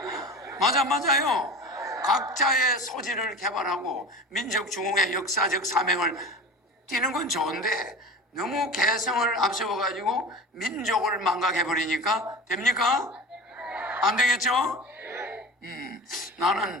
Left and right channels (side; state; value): both; normal; correlation 0.34